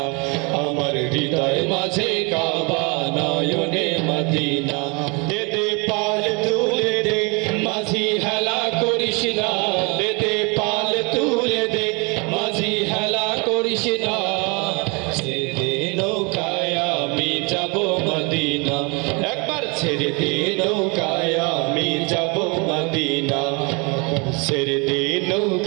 আমার হৃদয় মাঝে কাবা নয়নে মদিনা দে পাল তুলে দে মাঝি হেলা করিস না দে পাল তুলে দে মাঝি হেলা করিস না ছেড়ে দে নৌকায় আমি যাব মদিনা একবার ছেড়ে দে নৌকায় আমি যাব মদিনা ছেড়ে দে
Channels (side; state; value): left; quieter; 30.9 dB